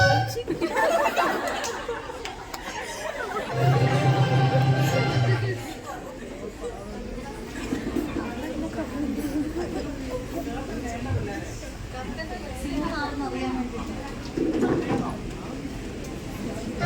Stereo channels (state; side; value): identical; both; correlation 1.00